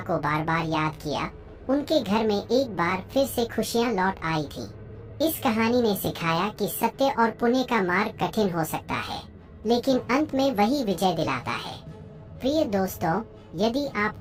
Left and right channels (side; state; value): both; identical; correlation 1.00